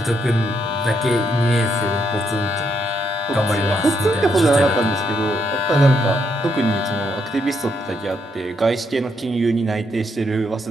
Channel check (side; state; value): both; normal; correlation 0.76